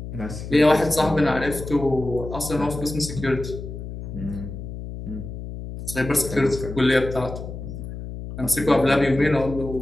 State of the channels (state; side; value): noise; left; hum, 9 dB below the sound